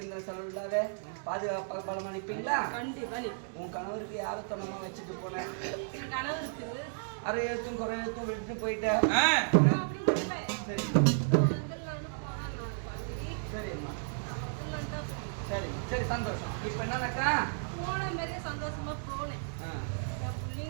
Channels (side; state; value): left; silent; digital silence